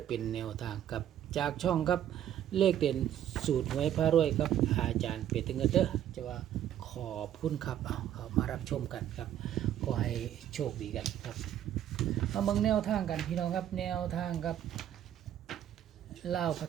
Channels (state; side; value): quieter; left; 10.9 dB